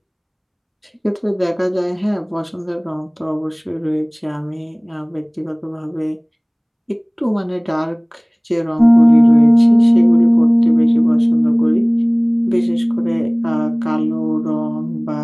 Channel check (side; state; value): both; identical; correlation 1.00